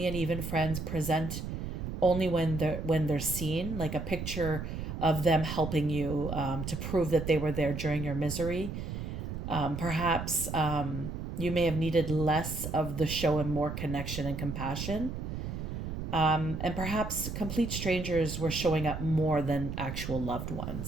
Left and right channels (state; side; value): noise; right; rumble, 5 dB below the sound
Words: and even friends present only when they're seen, like a picture of them helping you to prove that they were there during your misery. Perhaps you may have needed less of the show and more connection and compassion. And perhaps complete strangers were showing up more than actual loved